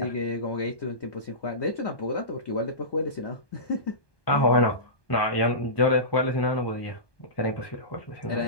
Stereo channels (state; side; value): late; right; 1.2 ms